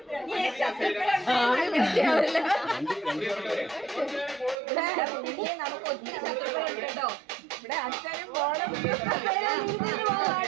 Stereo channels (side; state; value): left; drops out; at 4.5 s